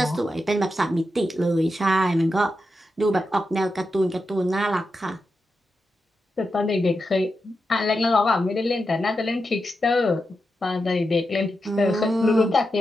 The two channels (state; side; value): normal; both; correlation 0.88